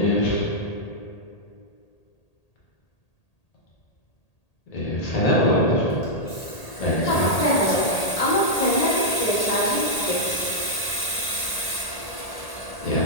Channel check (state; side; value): late; right; 1.8 ms